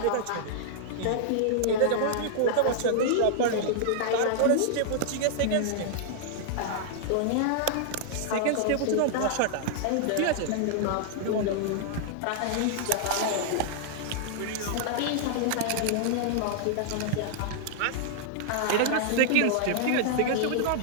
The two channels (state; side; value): different; both; correlation -0.01